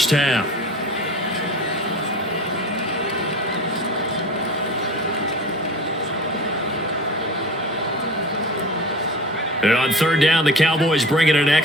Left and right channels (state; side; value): normal; both; correlation 0.36